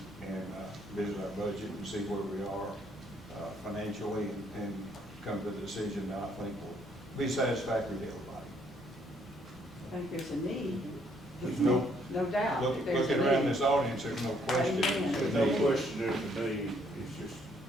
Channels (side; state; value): both; normal; correlation 0.68